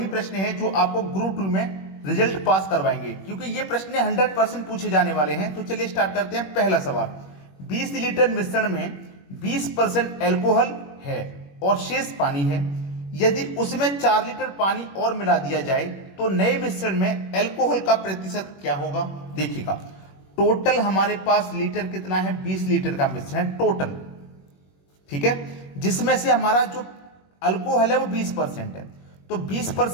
प्रश्न है जो आपको ग्रुप 2 में रिजल्ट पास करवाएंगे, क्योंकि ये प्रश्न 100% पूछे जाने वाले हैं। तो चलिए स्टार्ट करते हैं। पहला सवाल, 20 लीटर मिश्रण में 20% एल्कोहल है और शेष पानी है। यदि उसमें 4 लीटर पानी और मिला दिया जाए तो नए मिश्रण में एल्कोहल का प्रतिशत क्या होगा। देखिएगा, टोटल हमारे पास लीटर कितना है, 20 लीटर का मिश्रण है टोटल, ठीक है, जिसमें से हमारा जो अल्कोहल है वो 20% है। तो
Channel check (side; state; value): right; late; 21 ms